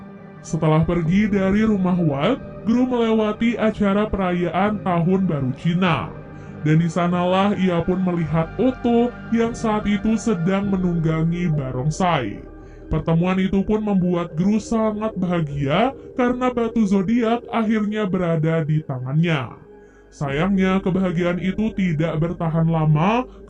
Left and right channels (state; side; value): identical; both; correlation 1.00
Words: Setelah pergi dari rumah Walt, Gru melewati acara perayaan Tahun Baru Cina. Dan di sanalah ia pun melihat Otto yang saat itu sedang menunggangi barongsai. Pertemuan itu pun membuat Gru sangat bahagia karena batu zodiak akhirnya berada di tangannya. Sayangnya kebahagiaan itu tidak bertahan lama